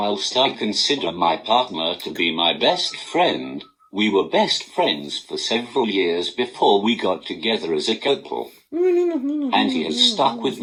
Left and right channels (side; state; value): both; identical; correlation 1.00